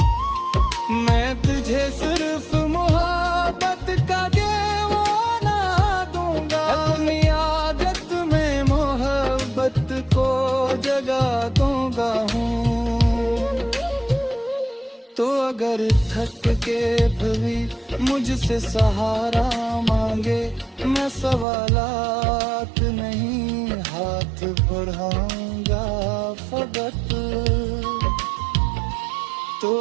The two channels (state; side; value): drops out; left; at 21.5 s